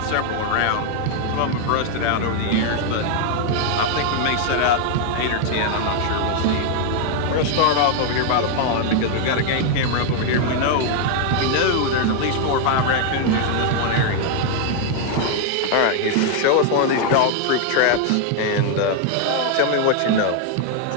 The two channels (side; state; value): both; different; correlation 0.00